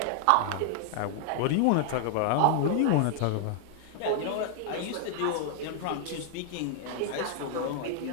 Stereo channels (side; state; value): both; different; correlation 0.00